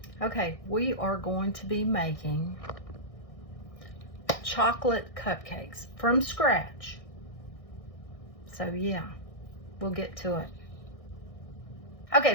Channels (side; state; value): right; late; 1.6 ms